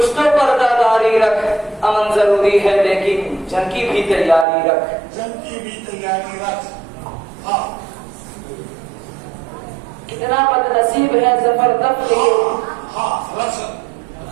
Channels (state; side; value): drops out; left; at 4.5 s